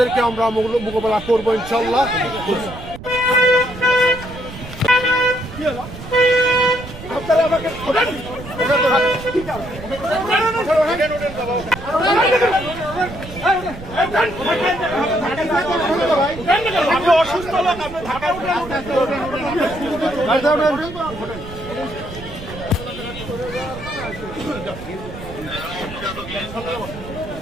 আমরা মোকাবেলা করবো ইনশাল্লাহ। অসুস্থ লোক আপনি ঢাকা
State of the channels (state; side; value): noise; right; rumble, 13 dB below the sound